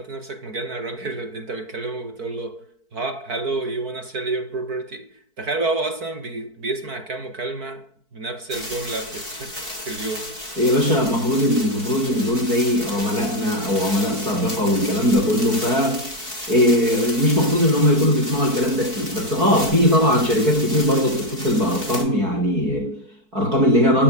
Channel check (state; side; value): late; left; 4.5 ms